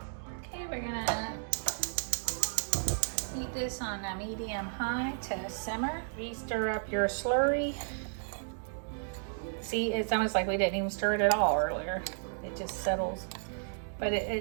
Okay, we're gonna heat this on a medium-high to simmer. Re-stir up your slurry. See, it's almost like we didn't even stir it at all earlier. It just settles, but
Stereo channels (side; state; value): left; silent; digital silence